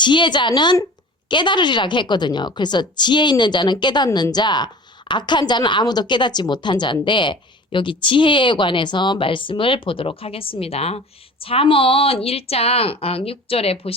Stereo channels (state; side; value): normal; both; correlation 0.40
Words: 깨달으리라고 했거든요. 그래서 지혜 있는 자는 깨닫는 자, 악한 자는 아무도 깨닫지 못한 자인데 여기 지혜에 관해서 말씀을 보도록 하겠습니다. 잠언 1장 6절에